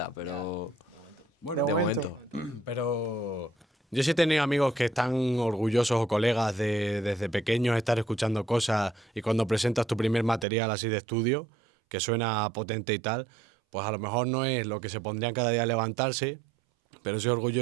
pero... Bueno, de momento. Pero yo sí he tenido amigos que están orgullosos o colegas de desde pequeños estar escuchando cosas y cuando presentas tu primer material así de estudio, que suena potente y tal, pues a lo mejor no es lo que se pondrían cada día a levantarse, pero soy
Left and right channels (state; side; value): drops out; left; at 10.5 s